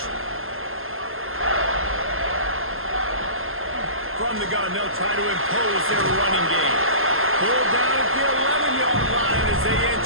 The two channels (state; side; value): late; left; 0.60 ms